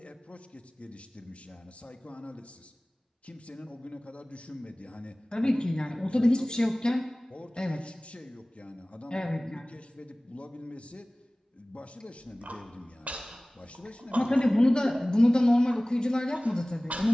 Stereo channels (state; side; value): normal; both; correlation 0.98